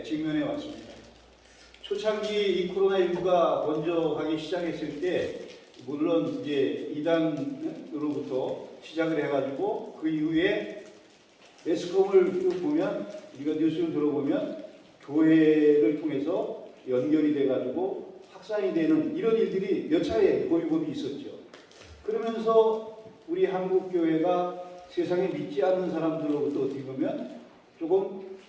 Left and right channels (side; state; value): both; identical; correlation 1.00